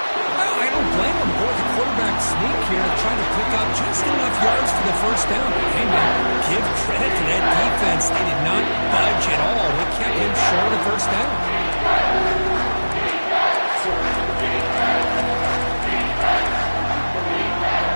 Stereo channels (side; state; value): both; inverted; correlation -1.00